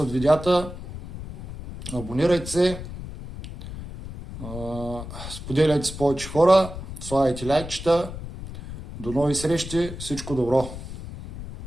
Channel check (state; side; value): noise; left; rumble, 11 dB below the sound